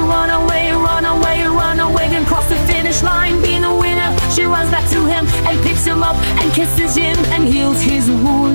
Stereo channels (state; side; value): inverted; both; correlation -1.00